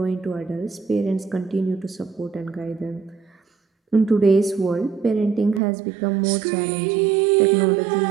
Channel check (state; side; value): drops out; left; at 5.6 s